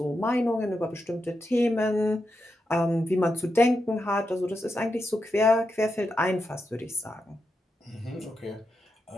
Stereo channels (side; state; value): both; normal; correlation 0.86